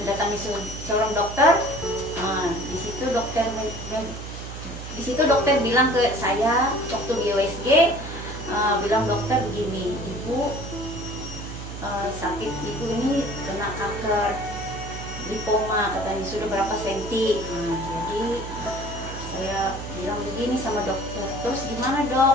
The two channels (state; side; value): noise; right; hum, 10 dB below the sound